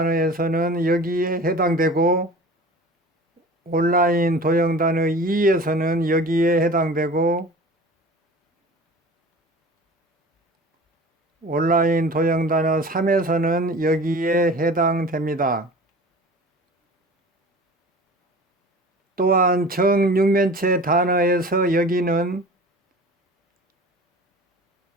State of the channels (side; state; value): both; normal; correlation 0.40